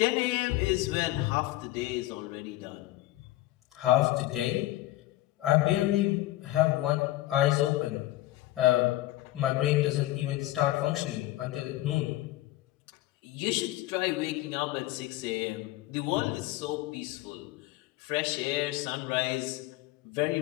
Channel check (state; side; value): quieter; right; 16.4 dB